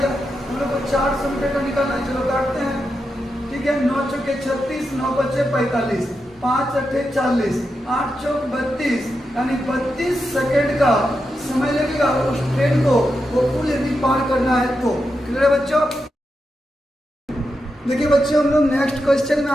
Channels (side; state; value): both; normal; correlation 0.87